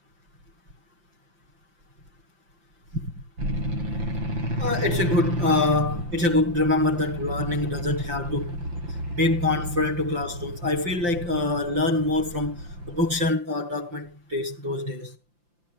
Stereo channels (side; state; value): left; late; 5.8 ms